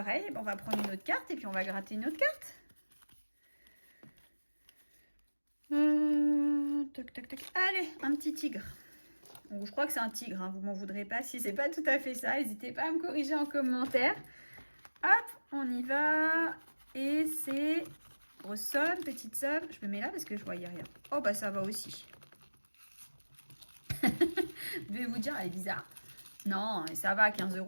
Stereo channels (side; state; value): both; inverted; correlation -1.00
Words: On va prendre une autre carte et puis on va gratter une autre carte. Tac. Allez, un petit tigre. Bon, je crois que c'est un tigre, hein, vous m'en voudrez pas. Si c'est pas tout à fait ça, n'hésitez pas à me corriger en commentaire. Hop, on y va. Et c'est grosse somme, petite somme. Je me mets là parce que je voyais rien. Oh, bah ça va aussi. Je vais vous dire, elle est bizarre. Non, ça va, 15